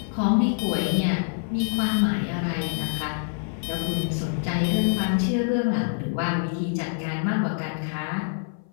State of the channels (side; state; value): right; silent; 56 dB below the other